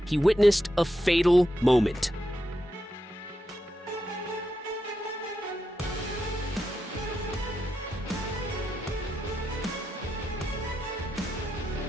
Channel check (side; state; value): both; normal; correlation 0.86